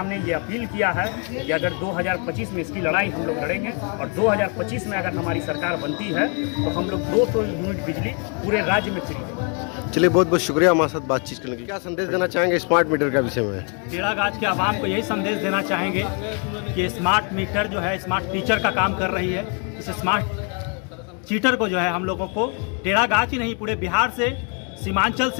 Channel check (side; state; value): right; quieter; 38.3 dB